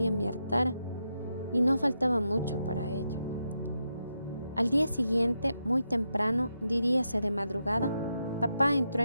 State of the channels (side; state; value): both; inverted; correlation -0.85